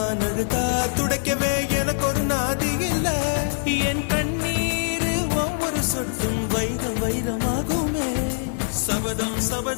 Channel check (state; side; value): silent; right; digital silence